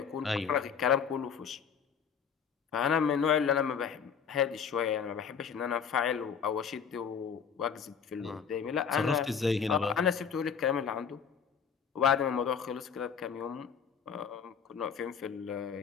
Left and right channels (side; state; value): right; quieter; 7.0 dB